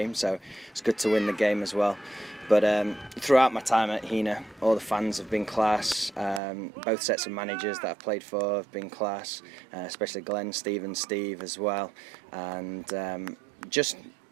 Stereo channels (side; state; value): left; drops out; at 6.4 s